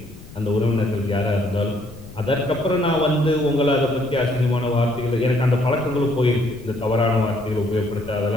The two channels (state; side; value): noise; left; rumble, 18 dB below the sound